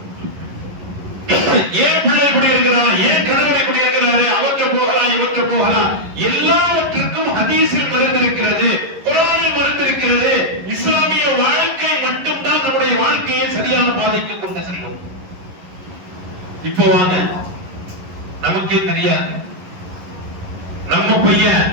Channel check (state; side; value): late; left; 11 ms